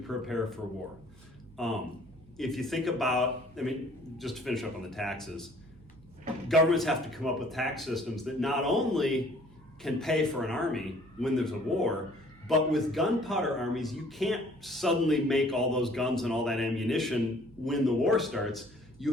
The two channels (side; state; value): right; noise; hum, 24 dB below the sound